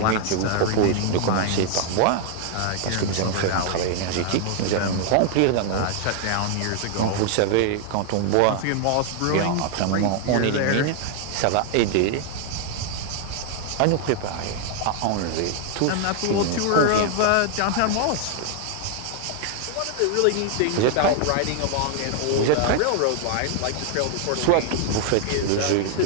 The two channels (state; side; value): different; both; correlation 0.00